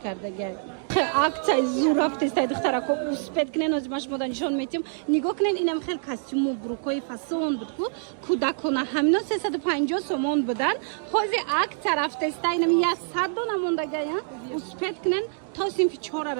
کرده گه акция زور رفته است دخترها کو اسپید کنن از ماش مدن نشون میتیم نگاه کنین اینم خیلی کاستوم و بروکای فاسون بود کو کودکانه همینا 350 سومون بودن حاضر акция رفته است اینم 100 دو نمونده گه اسپید کنن تا سینفی 4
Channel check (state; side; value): silent; left; digital silence